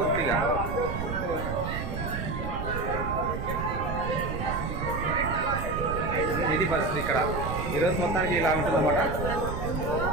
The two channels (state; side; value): noise; right; rumble, 4 dB below the sound